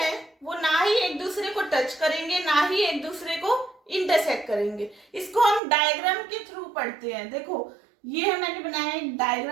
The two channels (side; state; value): left; drops out; at 5.6 s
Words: वो ना ही एक दूसरे को टच करेंगे, ना ही एक दूसरे को इंटरसेक्ट करेंगे। इसको हम डायग्राम के थ्रू पढ़ते हैं। देखो ये मैंने बनाया, एक